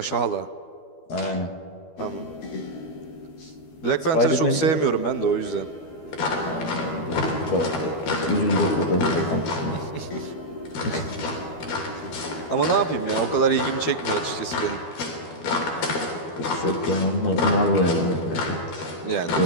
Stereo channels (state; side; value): late; right; 12 ms